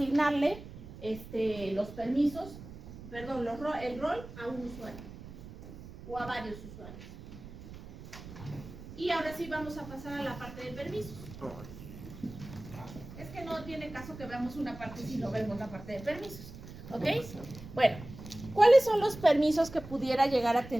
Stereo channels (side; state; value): right; noise; rumble, 14 dB below the sound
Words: los permisos, perdón, el rol a un usuario o a varios usuarios. Y ahora sí vamos a pasar a la parte de permisos. Es que no tiene caso que veamos una parte si no vemos la parte de permisos, ¿ok? Bueno, ¿cuáles son los permisos que pudiera llegar a